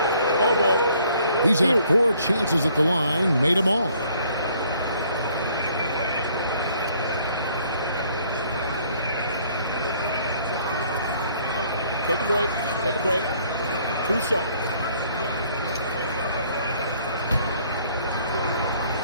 Elbow. He's had 4 chances at the line, made them all. Take a break. Take a break. 2 shots.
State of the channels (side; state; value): both; inverted; correlation -0.62